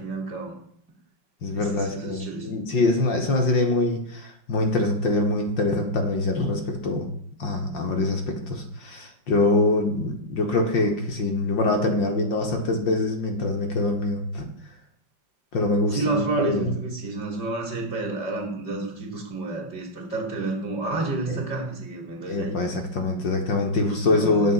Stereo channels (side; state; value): right; late; 5.7 ms